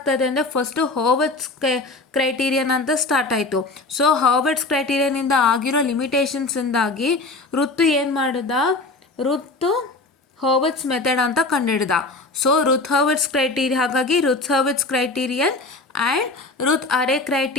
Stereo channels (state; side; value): quieter; right; 3.3 dB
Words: ಅಂದರೆ ಫಸ್ಟು ಹರ್ಬರ್ಟ್ಸ್ ಕ್ರೈಟೀರಿಯನ್ ಅಂತ ಸ್ಟಾರ್ಟ್ ಆಯಿತು. ಸೊ ಹರ್ಬರ್ಟ್ಸ್ ಕ್ರೈಟೀರಿಯನಿಂದ ಆಗಿರೋ ಲಿಮಿಟೇಷನ್ಸಿಂದಾಗಿ ಋತು ಏನು ಮಾಡಿದ, ಋತು ಹರ್ಬರ್ಟ್ಸ್ ಮೆಥಡ್ ಅಂತ ಕಂಡುಹಿಡ್ದ. ಸೊ ರುತ್ ಹರ್ಬರ್ಟ್ಸ್ ಕ್ರೈಟೀರಿಯನ್, ಹಾಗಾಗಿ Routh Hurwitz criterion and Routh array